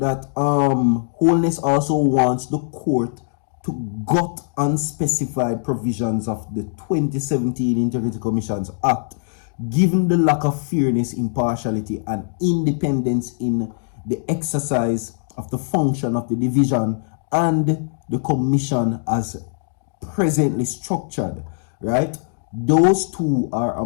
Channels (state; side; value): silent; right; digital silence